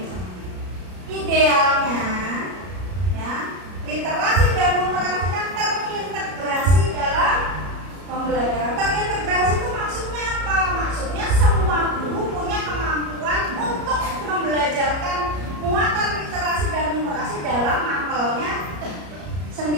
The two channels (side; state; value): left; late; 33 ms